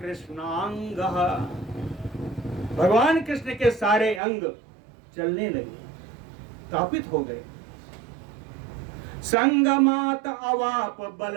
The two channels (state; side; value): drops out; left; at 4.2 s